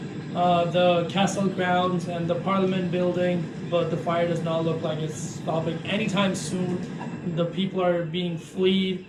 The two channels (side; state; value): both; identical; correlation 1.00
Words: the castle grounds and the parliament building, but the fire does not look like it's stopping anytime soon. The people are being fleed,